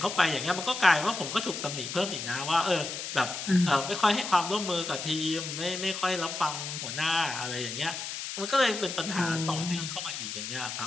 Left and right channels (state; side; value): noise; left; hiss, 6 dB below the sound